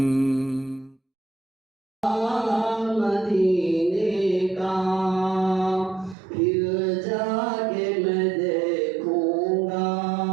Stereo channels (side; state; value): left; drops out; at 6.2 s